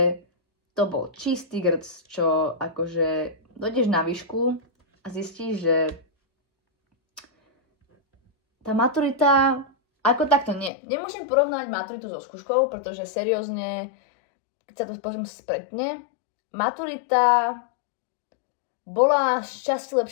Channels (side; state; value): right; drops out; at 10.7 s